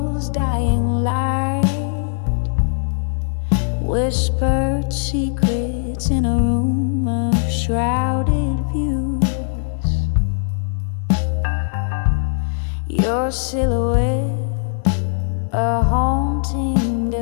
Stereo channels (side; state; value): right; silent; digital silence